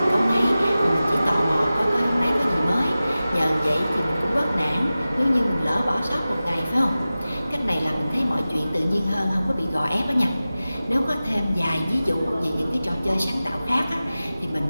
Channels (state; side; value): inverted; both; correlation -0.96